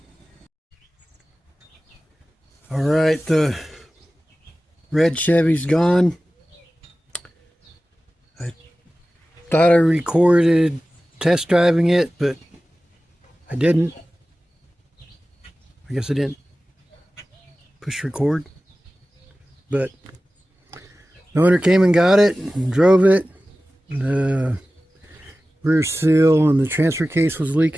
Alright, the red Chevy's gone. I thought I recorded test driving it, but I didn't. I guess I didn't push record. But the owner came and got it and drove it. The rear seal and the transfer case was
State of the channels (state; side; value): normal; both; correlation 0.96